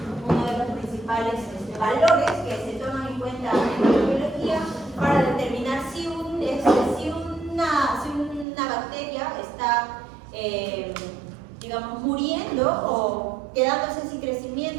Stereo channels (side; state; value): left; drops out; at 8.5 s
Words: uno de los principales valores que se toman en cuenta en la biología para determinar si una bacteria está, digamos, muriendo o quedándose sin